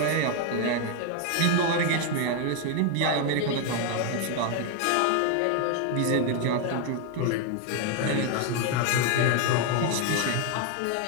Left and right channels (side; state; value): both; different; correlation 0.01